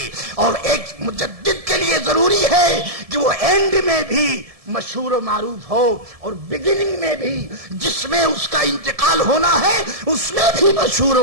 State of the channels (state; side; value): late; left; 1.7 ms